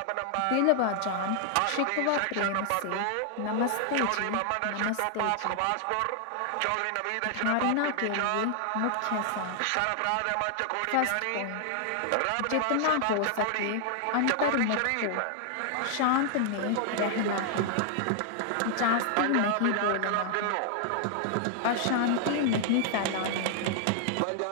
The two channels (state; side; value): different; both; correlation 0.00